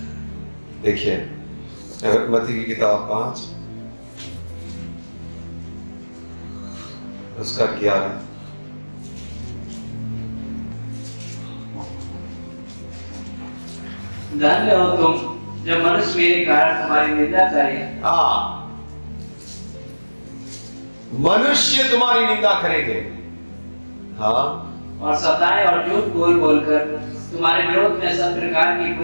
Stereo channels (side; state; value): both; inverted; correlation -1.00